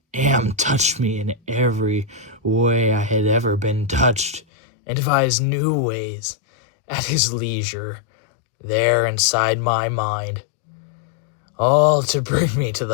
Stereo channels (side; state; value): right; drops out; at 4.4 s